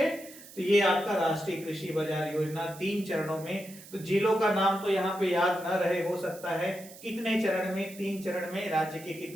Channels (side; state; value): right; noise; hiss, 18 dB below the sound